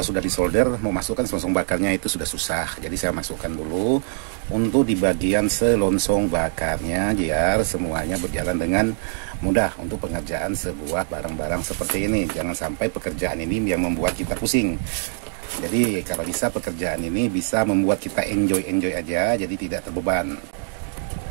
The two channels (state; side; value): silent; left; digital silence